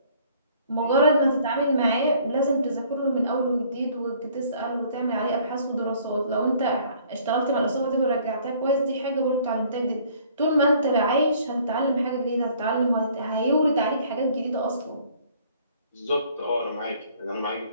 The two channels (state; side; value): inverted; both; correlation -0.58